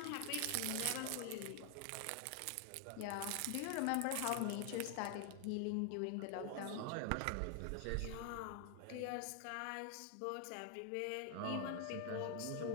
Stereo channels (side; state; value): both; different; correlation 0.00